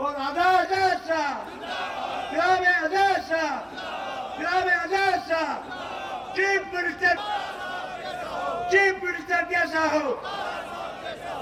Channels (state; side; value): identical; both; correlation 1.00